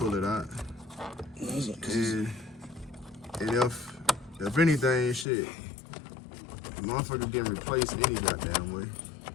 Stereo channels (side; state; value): right; drops out; at 5.2 s